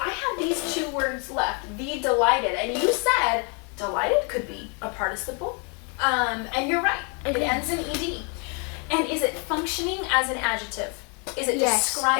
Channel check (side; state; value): right; quieter; 36.2 dB